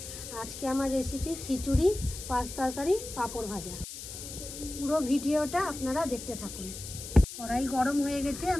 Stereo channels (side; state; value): left; noise; hiss, 10 dB below the sound